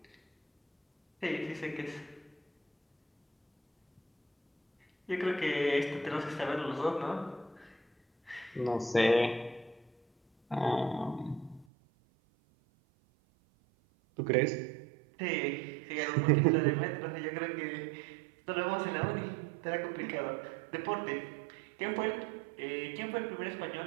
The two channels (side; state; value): left; drops out; at 11.7 s